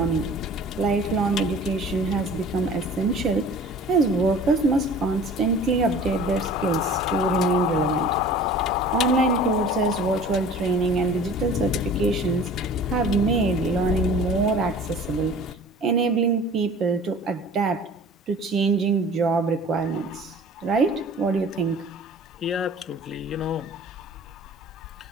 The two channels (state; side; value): normal; both; correlation 0.44